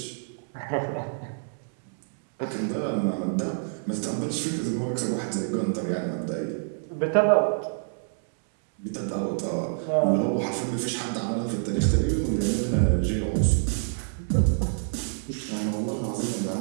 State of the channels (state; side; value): silent; left; 60 dB below the other